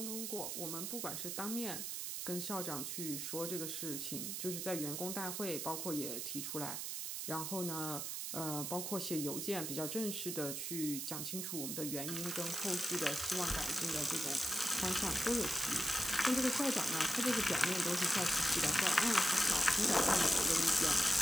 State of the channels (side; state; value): right; noise; hiss, 3 dB below the sound